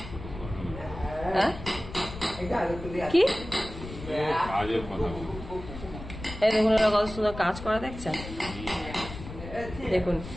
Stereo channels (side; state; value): left; noise; rumble, 11 dB below the sound